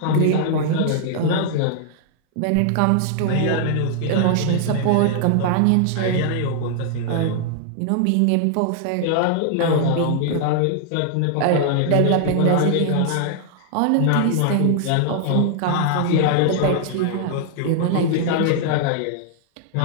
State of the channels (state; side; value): different; both; correlation 0.00